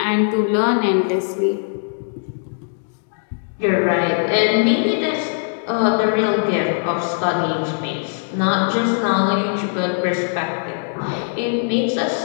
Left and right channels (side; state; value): right; silent; digital silence